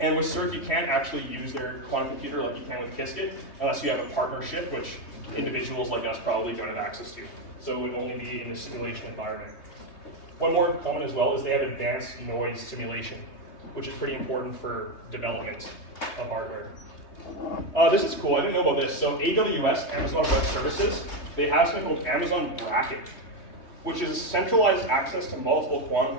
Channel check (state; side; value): late; right; 3.2 ms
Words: with CERC, you can't actually use their quantum computer like you can with Qiskit, unless you have a partnership, which individuals like us probably don't have access to. So it would only be in a simulation environment. One more comment as well is they have advanced noise simulation, which is pretty important for development of hardware. This is cool, I didn't know about this. So AWS, Amazon Web Services, they have something called Amazon Bracket, which is centralized access to multiple quantum